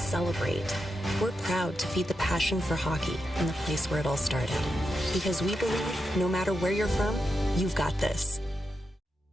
We're proud to feed the passion for hockey in the place where it all started. Because we believe no matter where you're from, you've got this.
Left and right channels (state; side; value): normal; both; correlation 0.87